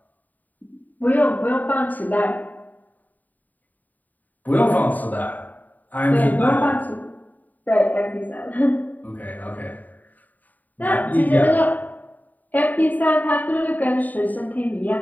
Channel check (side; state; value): right; late; 0.082 ms